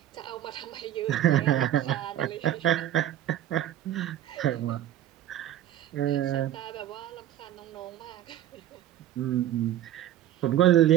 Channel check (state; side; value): quieter; left; 12.0 dB